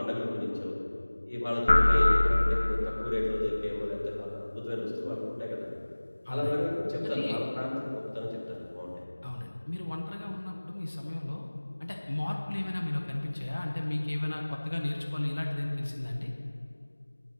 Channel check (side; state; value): both; inverted; correlation -1.00